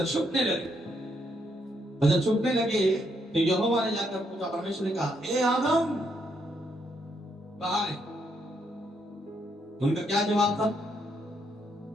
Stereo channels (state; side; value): normal; both; correlation 0.75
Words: छुपने लगे। और जब छुपने लगे तो यहोवा ने जाकर पूछा, परमेश्वर ने कहा, हे आदम कहाँ है? उनका क्या जवाब था?